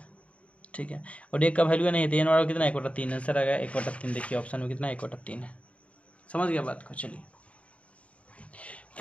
ठीक है और 1 का वैल्यू नहीं है तो n वाला कितना 1/3 आंसर आ गया 1/3। देखिए ऑप्शन में कितना 1/3 है, समझ गया बात को। चलिए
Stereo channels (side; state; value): right; late; 0.065 ms